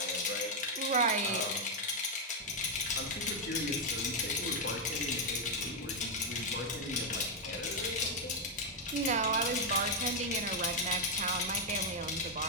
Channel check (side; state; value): both; normal; correlation 0.01